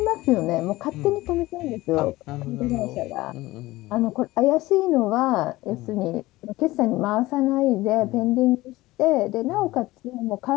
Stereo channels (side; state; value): right; quieter; 18.6 dB